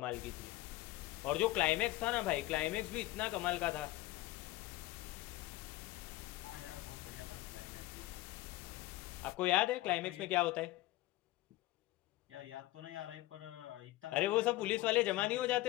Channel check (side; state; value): right; quieter; 17.8 dB